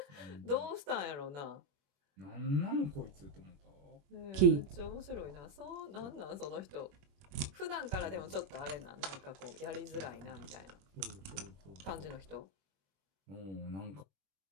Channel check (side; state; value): left; late; 21 ms